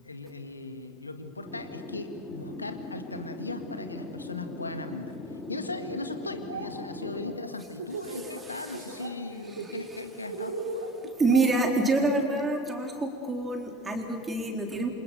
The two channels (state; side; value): normal; both; correlation 0.35